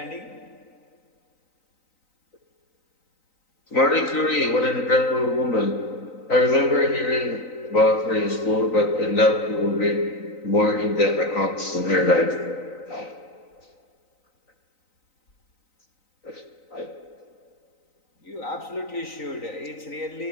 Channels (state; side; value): late; right; 3.9 ms